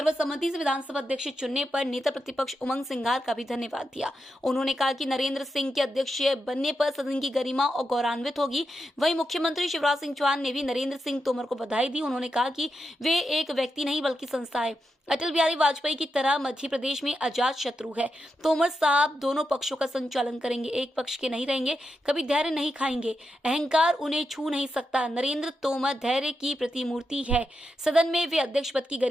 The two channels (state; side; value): normal; both; correlation 0.86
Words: से विधानसभा अध्यक्ष चुनने पर नेता प्रतिपक्ष उमंग सिंघार का भी धन्यवाद दिया। उन्होंने कहा कि नरेंद्र सिंह के अध्यक्ष बनने पर सदन की गरिमा और गौरवान्वित होगी। वहीं मुख्यमंत्री शिवराज सिंह चौहान ने भी नरेंद्र सिंह तोमर को बधाई दी। उन्होंने कहा कि वे एक व्यक्ति नहीं बल्कि संस्था है। अटल बिहारी वाजपेयी की तरह मध्य प्रदेश में अजात शत्रु है। तोमर साहब दोनों पक्षों का संचालन करेंगे, एक पक्ष के नहीं रहेंगे, कभी धैर्य नहीं खाएंगे, अहंकार उन्हें छू नहीं सकता। नरेंद्र तोमर धैर्य की प्रतिमूर्ति है। सदन में वे अध्यक्ष पद की